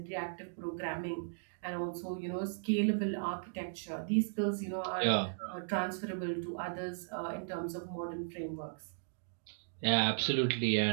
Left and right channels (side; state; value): left; silent; digital silence